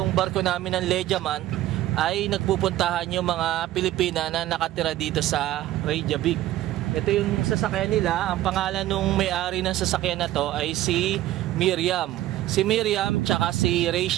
barko namin ng Legiaman ay nagpupuntahan yung mga Pilipina na nakatira dito sa Reykjavik. Ito yung sasakyan nila. Ang pangalan nung may-ari ng sasakyan na to ay si Miriam. Si Miriam tsaka si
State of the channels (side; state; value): left; quieter; 14.6 dB